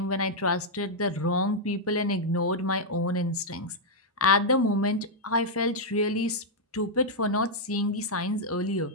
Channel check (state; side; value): normal; both; correlation -0.04